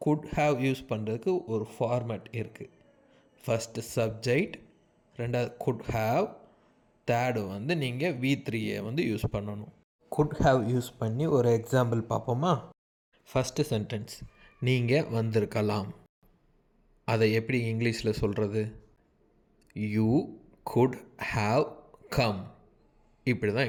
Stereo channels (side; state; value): both; identical; correlation 1.00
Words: குட் ஹேவ் யூஸ் பண்ணுறதுக்கு ஒரு ஃபார்மேட் இருக்குது. ஃபஸ்ட்டு சப்ஜெக்ட், ரெண்டாவது குட் ஹேவ், தேர்டு நீங்கள் V3 யூஸ் பண்ணணும். குட் ஹேவ் யூஸ் பண்ணி ஒரு எக்ஸாம்பிள் பார்ப்போமா? ஃபஸ்ட்டு சென்டென்ஸ், நீங்கள் வந்திருக்கலாம். அதை எப்படி இங்கிலீஷில் சொல்கிறது? You good have come. இப்படி தான்